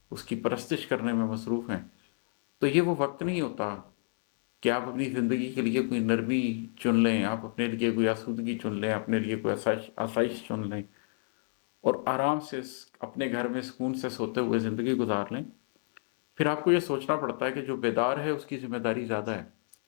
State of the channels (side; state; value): right; silent; 57 dB below the other